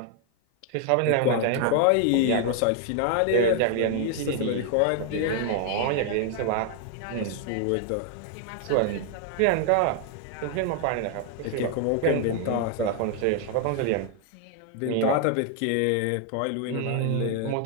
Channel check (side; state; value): both; different; correlation 0.00